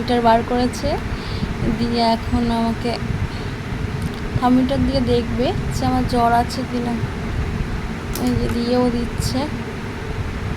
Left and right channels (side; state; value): both; identical; correlation 1.00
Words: বার করেছে, দিয়ে এখন আমাকে থার্মোমিটার দিয়ে দেখবে যে আমার জ্বর আছে কি না। এই যে দিয়েও দিচ্ছে।